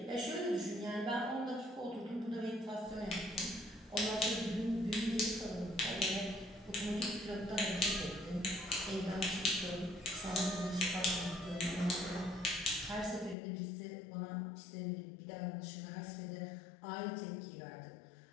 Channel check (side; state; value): right; drops out; at 13.4 s